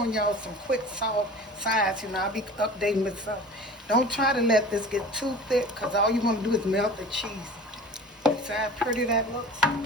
y'all some quick salt sides. I'll be updating with stuff. Don't try to let this get too thick, because all you want to do is melt the cheese. See how pretty that looks?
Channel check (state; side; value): normal; both; correlation 0.40